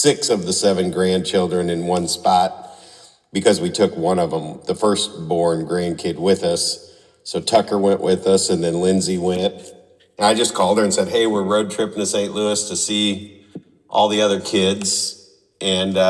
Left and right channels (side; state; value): both; identical; correlation 1.00